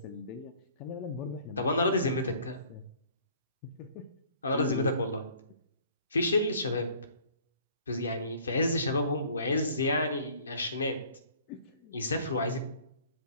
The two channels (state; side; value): inverted; both; correlation -0.54